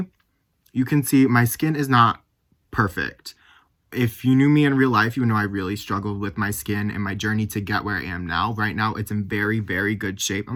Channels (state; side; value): identical; both; correlation 1.00